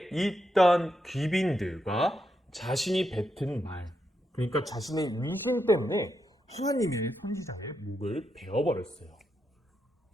있던 귀빈들과 자신이 뱉은 말, 그러니까 자신의 위신 때문에 하나님의 선지자의 목을 베어버렸어요.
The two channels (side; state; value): both; normal; correlation 0.83